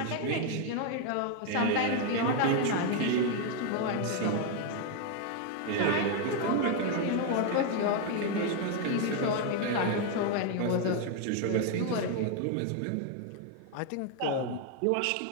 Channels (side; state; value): both; different; correlation 0.01